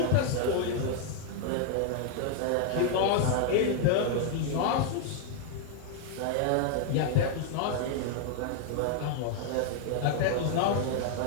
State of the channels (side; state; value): both; different; correlation 0.00